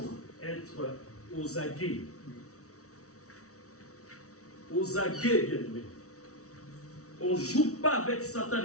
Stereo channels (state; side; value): late; right; 0.65 ms